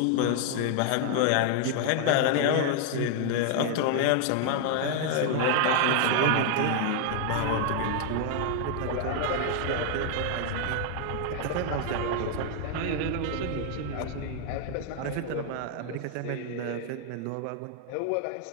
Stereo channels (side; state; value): both; different; correlation 0.00